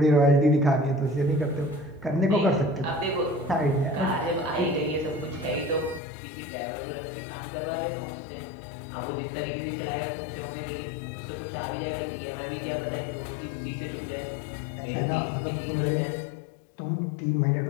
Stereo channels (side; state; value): right; drops out; at 6.0 s